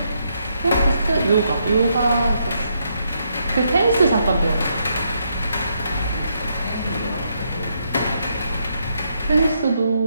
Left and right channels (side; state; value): both; inverted; correlation -0.77